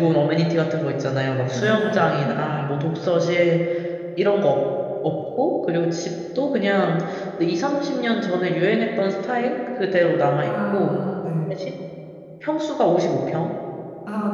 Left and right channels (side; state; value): both; identical; correlation 1.00